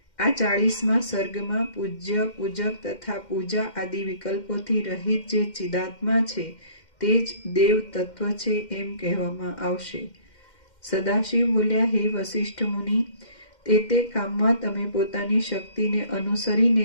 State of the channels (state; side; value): late; right; 2.1 ms